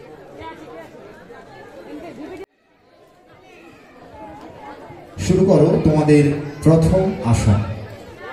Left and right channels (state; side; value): identical; both; correlation 1.00